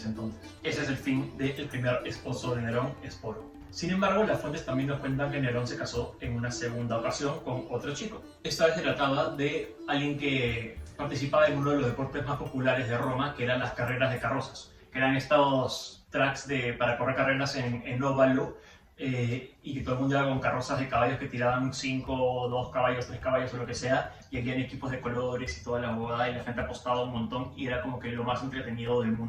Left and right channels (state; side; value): identical; both; correlation 1.00